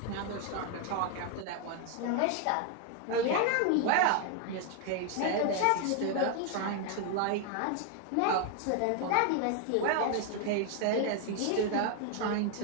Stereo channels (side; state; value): both; different; correlation 0.00